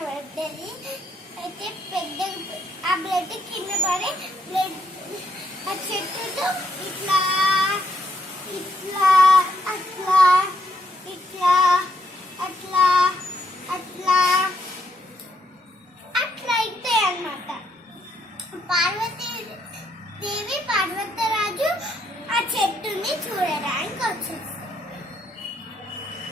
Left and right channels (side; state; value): both; normal; correlation 0.75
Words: పడ్డది. అయితే పెద్ద ఆ బ్లడ్ కింద పడి బ్లడ్ ఆ చెట్టుతో ఇట్లా ఇట్లా అట్లా ఇట్లా అట్లా అట్లా అట్లా అయితే అన్నమాట. పార్వతీ దేవి పర్వతరాజు ఆ చెట్టుని చూడడానికి వచ్చేసి